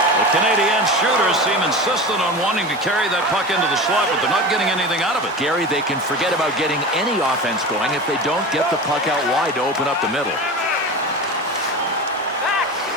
The Canadiens shooters seem insistent on wanting to carry that puck into the slot, but they're not getting anything out of it. Gary, they can forget about getting any offense going if they don't get the puck out wide to open up the middle.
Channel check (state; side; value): normal; both; correlation 0.29